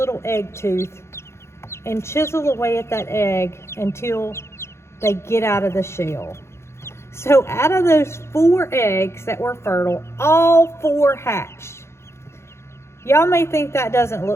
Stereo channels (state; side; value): late; right; 0.13 ms